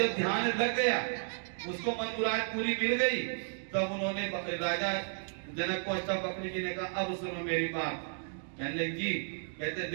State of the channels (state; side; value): silent; left; digital silence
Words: ध्यान लग गया, उसको मन मुराद पूरी मिल गई, तब उन्होंने राजा जनक को अष्टा बकरी जी ने कहा अब सुनो मेरी बात। कहने लगे जी, कहते